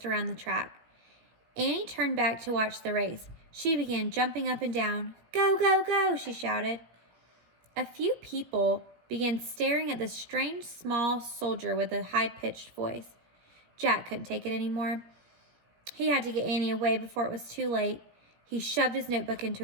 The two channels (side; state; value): left; late; 17 ms